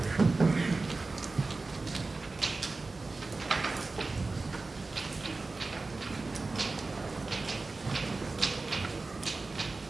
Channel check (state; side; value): quieter; left; 3.6 dB